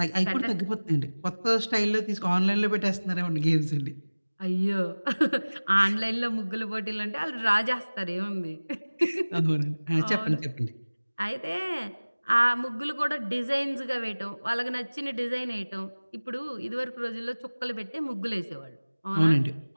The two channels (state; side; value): inverted; both; correlation -1.00